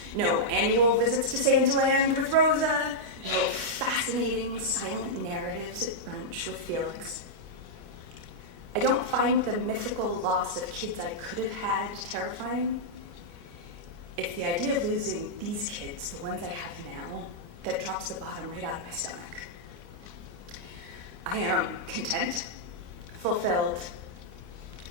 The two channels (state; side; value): late; left; 29 ms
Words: no annual visits to Santaland with Rosa, no fascinating silent narratives at brunch with Felix. I don't find the mythical loss of kids I could have had terrifying. It's the idea of losing these kids, the ones I have now, that drops the bottom right out of my stomach. I am content, fulfilled,